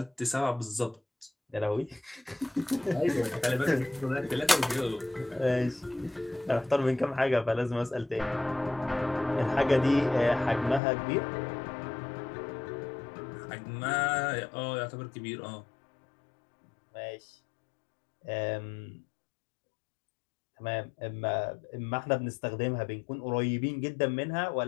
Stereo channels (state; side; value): drops out; right; at 10.8 s